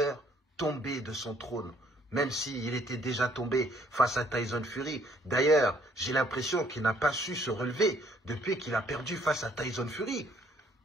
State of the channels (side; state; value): both; normal; correlation 0.63